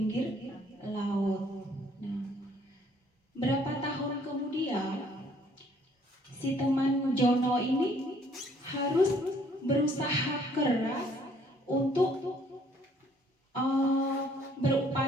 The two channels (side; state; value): both; normal; correlation 0.62